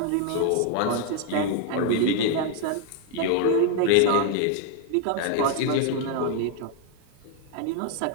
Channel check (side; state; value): both; different; correlation 0.00